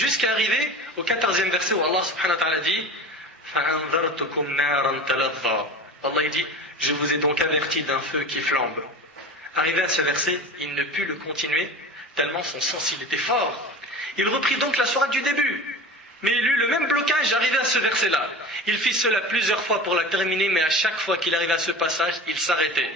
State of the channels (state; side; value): normal; both; correlation 0.34